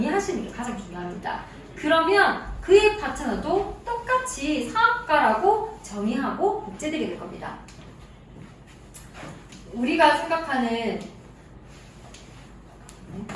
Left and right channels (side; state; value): both; identical; correlation 1.00